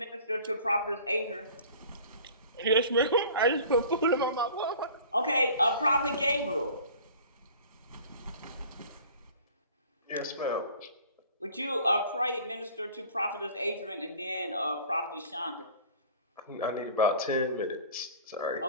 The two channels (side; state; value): both; inverted; correlation -0.46